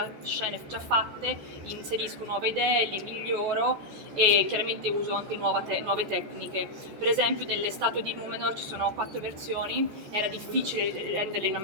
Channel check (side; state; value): left; late; 14 ms